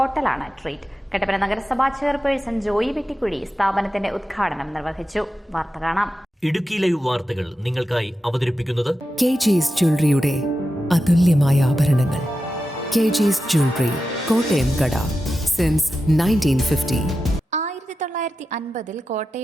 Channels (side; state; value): both; normal; correlation 0.91